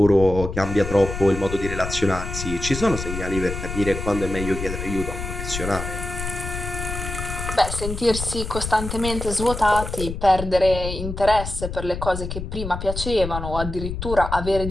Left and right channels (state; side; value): noise; left; rumble, 6 dB below the sound